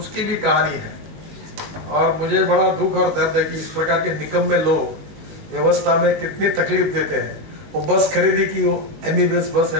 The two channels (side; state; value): left; late; 20 ms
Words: भी कहानी है। और मुझे बड़ा दुख और दर्द है कि इस प्रकार के निकम्मे लोग व्यवस्था में कितनी तकलीफ देते हैं। वो बस खरीदी की, वो MBBS बस